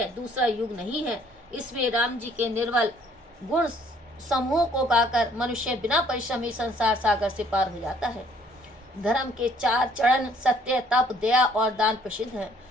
दूसरा युग नहीं है, इसमें राम जी के निर्मल गुण समूह को गाकर मनुष्य बिना परिश्रम ही संसार सागर से पार हो जाता है। धर्म के 4 चरण सत्य, तप, दया और दान प्रसिद्ध हैं,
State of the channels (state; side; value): normal; both; correlation 0.61